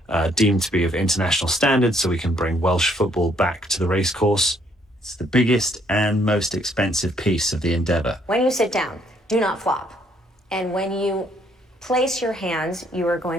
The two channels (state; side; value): normal; both; correlation 0.67